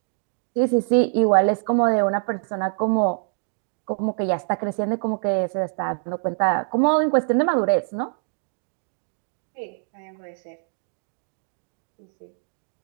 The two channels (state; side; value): silent; left; digital silence